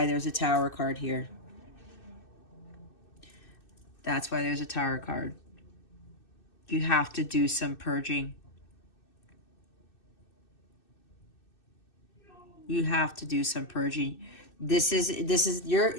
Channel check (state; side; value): late; right; 2.6 ms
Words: there's a Tower card here. That's why there's a Tower card. You have to do some purging. You have to do some purging. This is